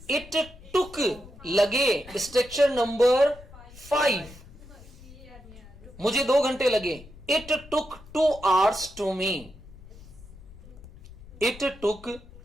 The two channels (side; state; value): left; noise; rumble, 19 dB below the sound